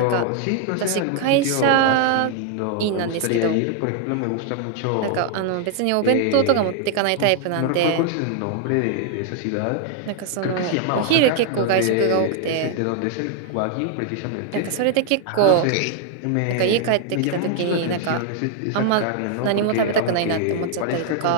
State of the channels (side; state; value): both; different; correlation 0.00